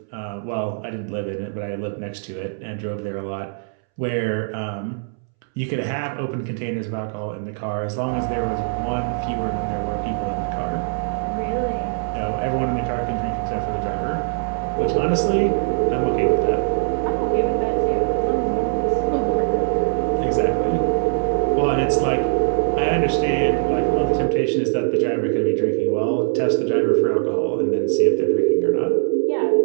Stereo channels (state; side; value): silent; left; 64 dB below the other